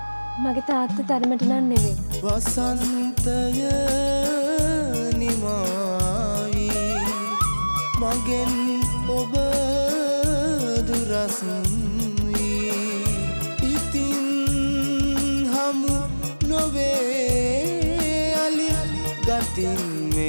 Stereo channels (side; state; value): both; inverted; correlation -1.00